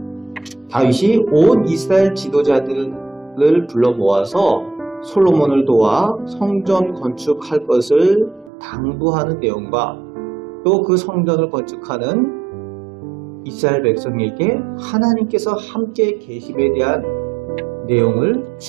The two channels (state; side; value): drops out; left; at 8.5 s